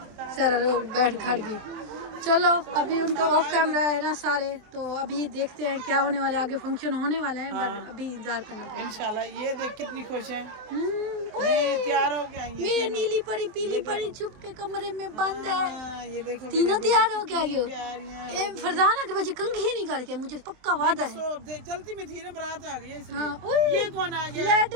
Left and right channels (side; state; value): left; late; 24 ms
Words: सारा लोग बैठ खड़ गई। चलो अभी उनका ऑफ कैमरा है ना सारे, तो अभी देखते हैं क्या होने वाला है, आगे फंक्शन होने वाला है, पर अभी इंतजार करना पड़ेगा इंशाल्लाह। ये देख कितनी खुश है, ये तैयार हो गया। मेरे नीली परी पीली परी छुप के कमरे में बंद है, ये देखो तीनों तैयार हो गया। ये फरजाना के बच्चे कंघी नहीं करके, मुझे पक्का वादा है। चलती में थी ना बारात आ गई। हाँ ये कौन आ गया? लाइट